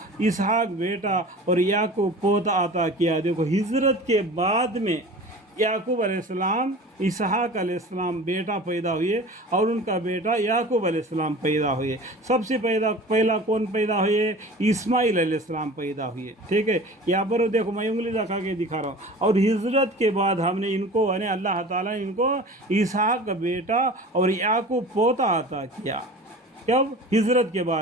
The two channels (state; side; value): normal; both; correlation 0.39